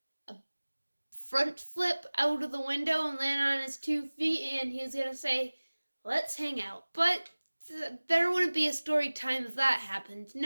a front flip out of the window and land on his 2 feet, and he was gonna say, "Let's hang out." But there wouldn't be a story time if that happened.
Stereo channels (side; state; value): both; inverted; correlation -1.00